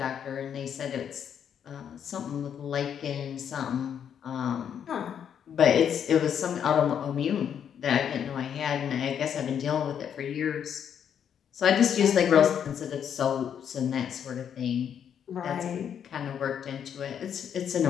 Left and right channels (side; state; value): right; quieter; 8.5 dB